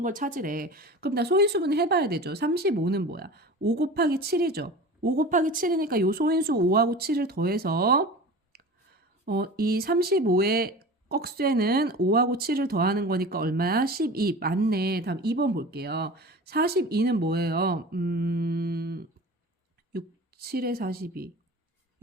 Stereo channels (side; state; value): both; normal; correlation 0.35